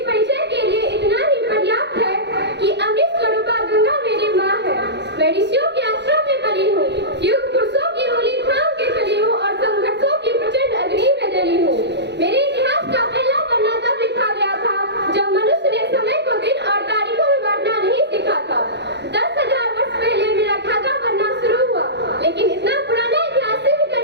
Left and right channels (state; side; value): late; left; 0.50 ms